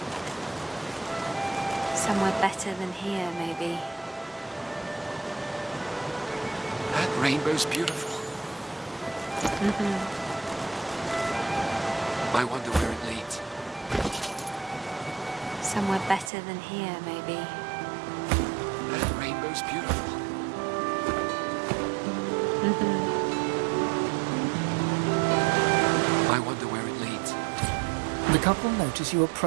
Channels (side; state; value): left; drops out; at 16.3 s